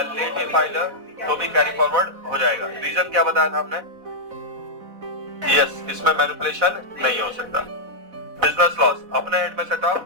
लेट भी फाइल हो तो भी कैरी फॉरवर्ड हो जाएगा। रीजन क्या बताया था हमने? यस, इसमें मैनिपुलेशन नहीं हो सकता। बिजनेस लॉस अपने हेड में सेटअप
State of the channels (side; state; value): left; late; 4.0 ms